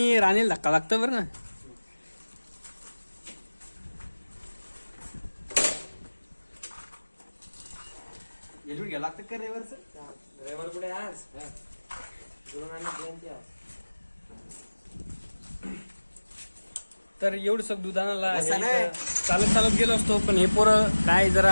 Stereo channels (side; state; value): both; inverted; correlation -1.00